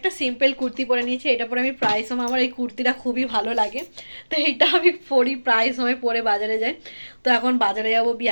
সিম্পল কুর্তি পরে নিয়েছি। এটা পরে আমি প্রায় সময়, আমার এই কুর্তিটা খুবই ভালো লাগে, তো এইটা আমি পরি প্রায় সময়, পরে বাজারে যাই। তো এখন বাজারে যাবো,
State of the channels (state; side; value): inverted; both; correlation -1.00